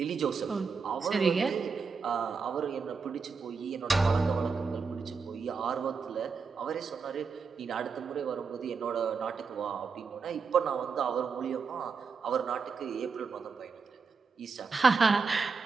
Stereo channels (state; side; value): quieter; left; 5.1 dB